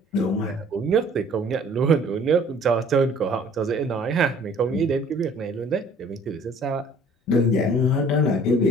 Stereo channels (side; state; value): both; normal; correlation 0.54